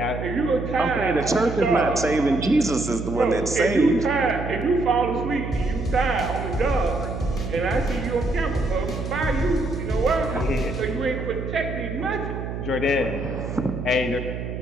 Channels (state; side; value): noise; right; hum, 6 dB below the sound